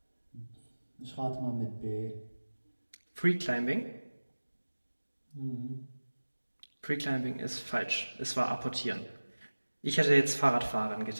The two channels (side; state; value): both; inverted; correlation -1.00